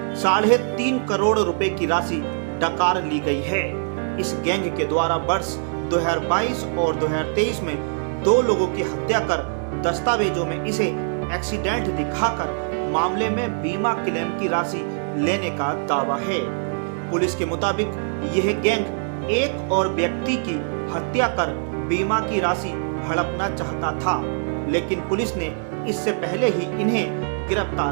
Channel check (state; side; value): silent; left; 63 dB below the other